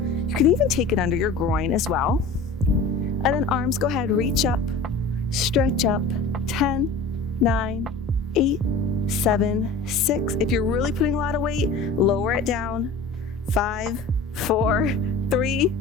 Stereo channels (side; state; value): right; quieter; 3.5 dB